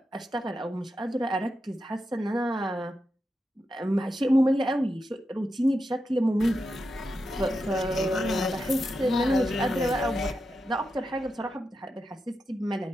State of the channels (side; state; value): both; normal; correlation 0.88